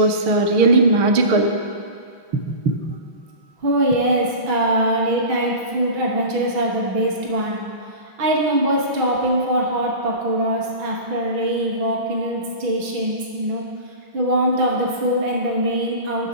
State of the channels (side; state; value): left; late; 6.1 ms